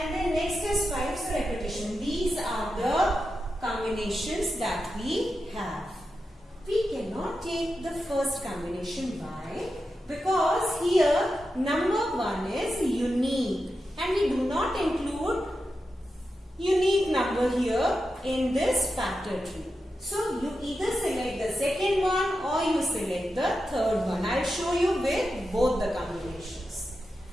then next is 5, so repetition. These are the combinations that we have. We cannot take the first combination. Why? Because here number 1 is unique and we do not include unique number here in this factor tree. So you either select the second one or you select the third one. I'll show you with both the combinations.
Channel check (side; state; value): both; normal; correlation 0.89